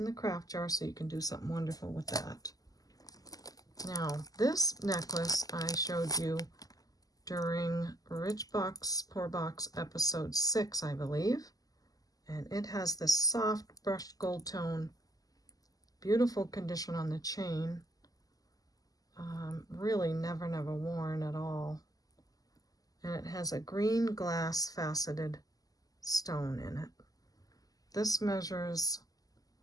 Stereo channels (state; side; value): late; right; 0.17 ms